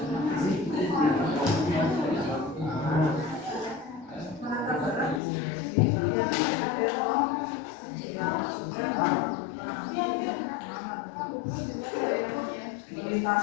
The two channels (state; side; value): drops out; right; at 5.2 s